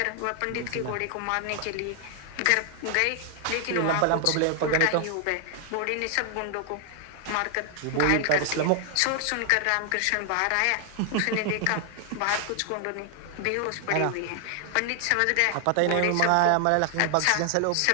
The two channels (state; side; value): different; both; correlation 0.00